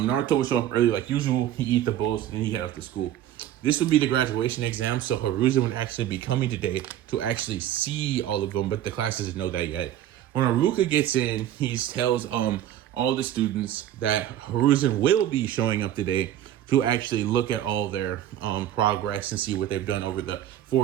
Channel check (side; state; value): left; quieter; 12.0 dB